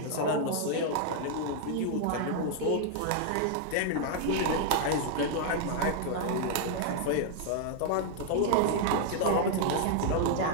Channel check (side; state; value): both; different; correlation -0.01